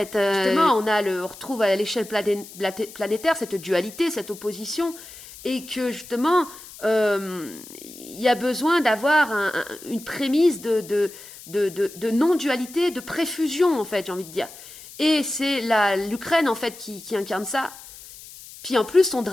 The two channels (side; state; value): left; noise; hiss, 17 dB below the sound